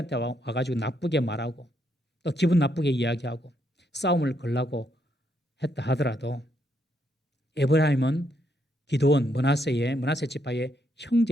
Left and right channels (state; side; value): normal; both; correlation 0.76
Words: 와가지고 나쁘게 말하고 또 기분 나쁘게 이야기하고 싸움을 걸라고 했다 하더라도 에브라임은 기드온 머나세 지파의